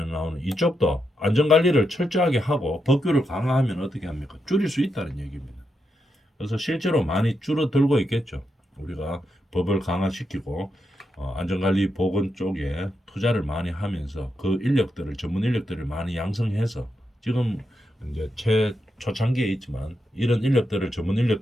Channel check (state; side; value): normal; both; correlation 0.84